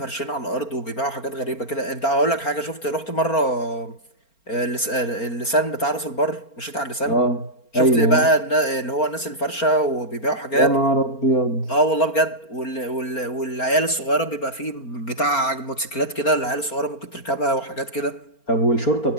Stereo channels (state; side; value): late; right; 4.4 ms